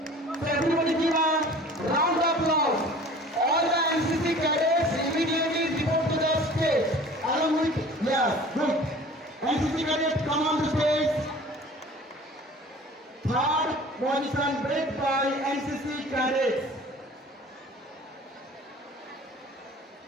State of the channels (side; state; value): both; normal; correlation 0.45